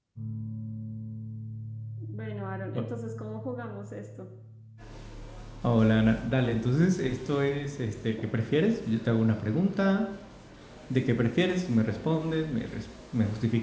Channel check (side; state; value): both; identical; correlation 1.00